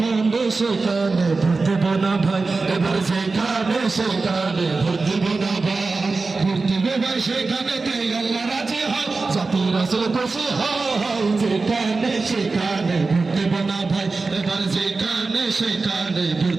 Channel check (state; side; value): quieter; left; 3.9 dB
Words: সেখানে ভোট দেব না ভাই, এবার যেখানে সেখানে ভোট দেব না ভাই, ভোট দেব ভাই সেখানেতে আল্লাহ রাজি হয়, জাতি রাসূল খুশি হয়। যেখানে সেখানে ভোট দেব না ভাই, এবার যেখানে সেখানে ভোট